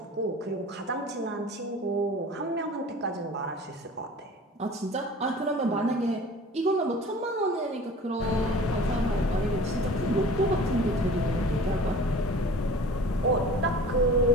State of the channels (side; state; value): both; normal; correlation 0.43